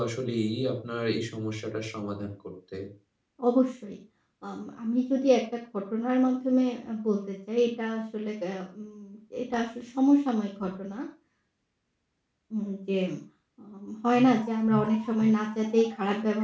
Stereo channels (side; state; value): both; identical; correlation 1.00